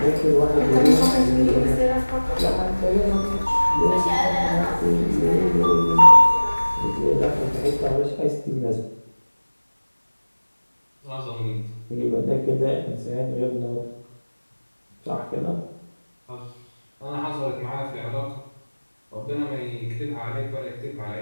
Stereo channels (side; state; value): both; inverted; correlation -1.00